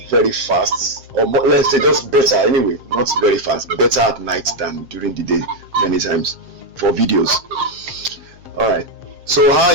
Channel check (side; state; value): left; late; 7.5 ms